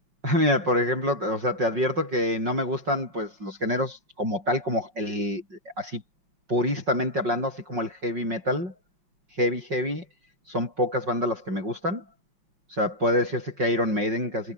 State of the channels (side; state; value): left; late; 5.5 ms